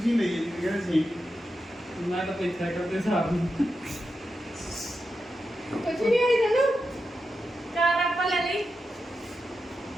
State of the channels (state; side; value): normal; both; correlation 0.88